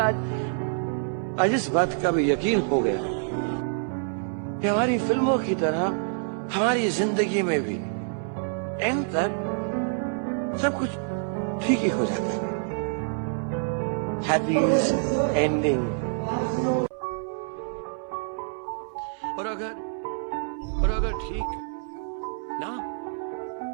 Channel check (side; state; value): left; silent; 60 dB below the other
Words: आज इस बात का भी यकीन हो गया कि हमारी फिल्मों की तरह हमारी जिंदगी में भी एंड तक सब कुछ ठीक ही हो जाता है। Happy ending. और अगर ठीक ना